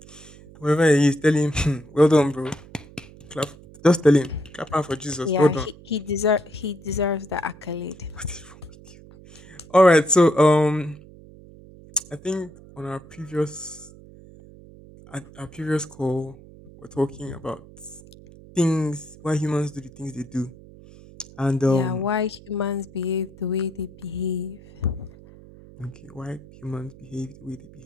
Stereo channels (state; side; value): noise; right; hum, 21 dB below the sound